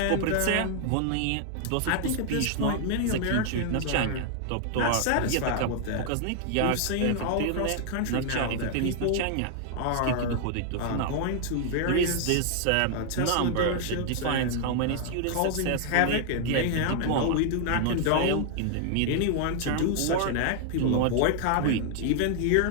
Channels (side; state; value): both; different; correlation 0.00